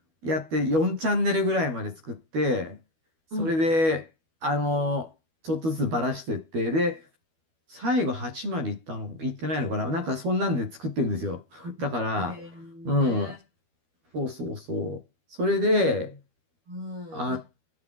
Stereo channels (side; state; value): left; late; 12 ms